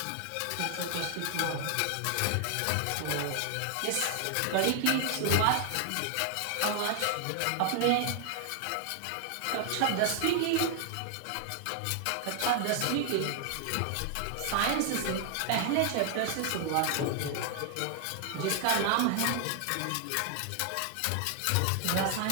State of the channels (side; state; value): both; different; correlation 0.00